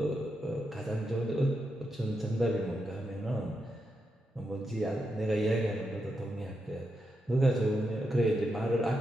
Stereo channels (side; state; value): both; normal; correlation 0.85